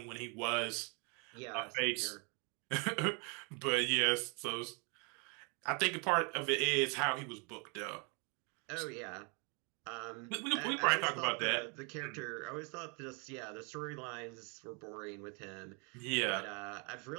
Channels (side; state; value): left; quieter; 33.9 dB